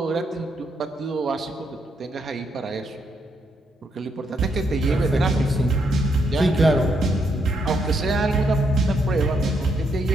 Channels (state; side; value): normal; both; correlation 0.77